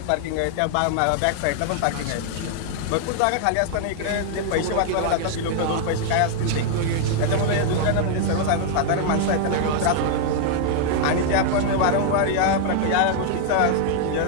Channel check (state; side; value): different; both; correlation 0.00